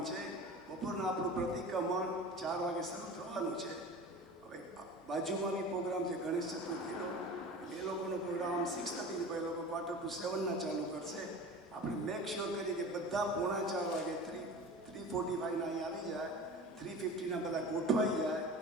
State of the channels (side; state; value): both; normal; correlation 0.36